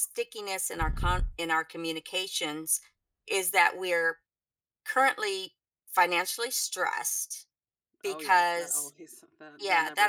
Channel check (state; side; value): identical; both; correlation 1.00